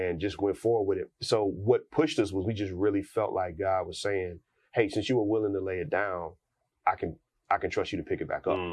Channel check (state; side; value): identical; both; correlation 1.00